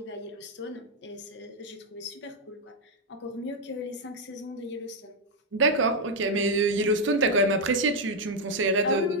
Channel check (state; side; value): normal; both; correlation 0.00